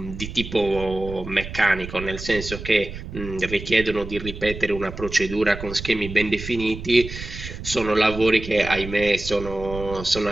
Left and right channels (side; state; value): right; noise; rumble, 10 dB below the sound